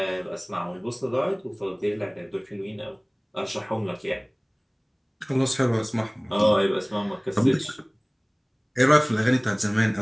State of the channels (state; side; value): identical; both; correlation 1.00